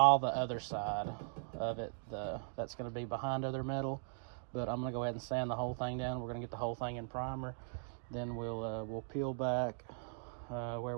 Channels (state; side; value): silent; left; digital silence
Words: the other side of it that's going to be behind other metal, but I'm going to go ahead and sand the whole thing down. We're going to get the whole thing in primer, then we'll peel back where